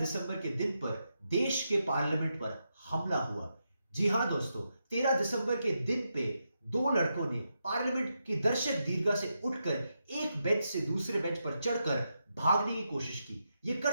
के दिन पर देश के पार्लियामेंट पर हमला हुआ। जी हां दोस्तों, 13 दिसंबर के दिन पे दो लड़कों ने पार्लियामेंट की दर्शक दीर्घा से उठकर एक बेंच से दूसरे बेंच पर चढ़कर भागने की कोशिश की। ये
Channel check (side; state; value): both; inverted; correlation -0.85